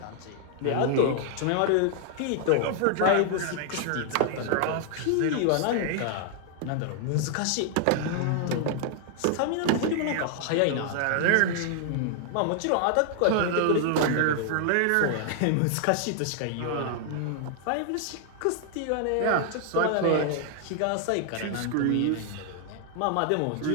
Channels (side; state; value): both; different; correlation 0.00